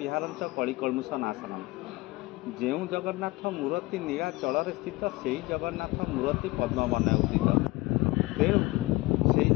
कलिकलुष नाशनम। जो जगन्नाथ मूर्ति नीलाचल स्थित से जगन्नाथ मूर्ति पद्मवन उदित। तेणु से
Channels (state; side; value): quieter; right; 21.2 dB